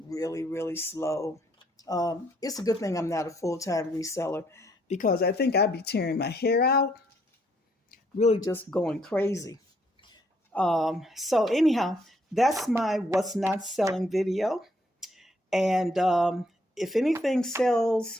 really, really slow. It's a good thing I'm not a full-time reseller because I think I'd be tearing my hair out, really just going crazy. So anyhow, that's my what's not selling video. And if anything sells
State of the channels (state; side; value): normal; both; correlation 0.69